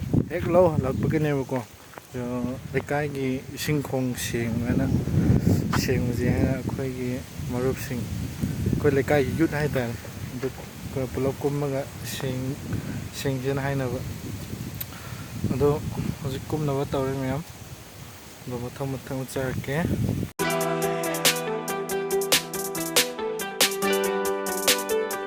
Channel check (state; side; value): identical; both; correlation 1.00